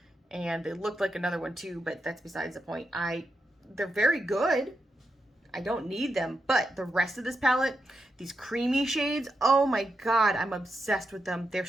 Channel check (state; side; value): normal; both; correlation 0.86